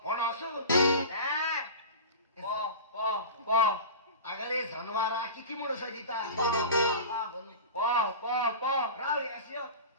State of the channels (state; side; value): inverted; both; correlation -0.31